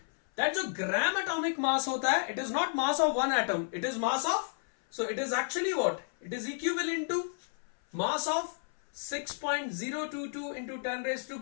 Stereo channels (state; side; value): silent; right; 57 dB below the other